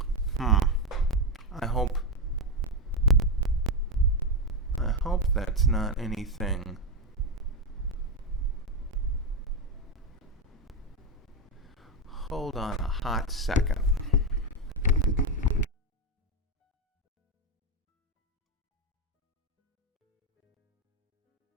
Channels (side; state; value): both; normal; correlation 0.09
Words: I hope that's not anything... Hold on a hot second.